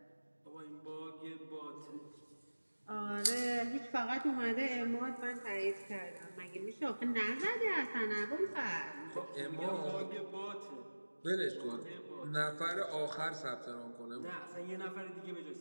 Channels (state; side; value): inverted; both; correlation -1.00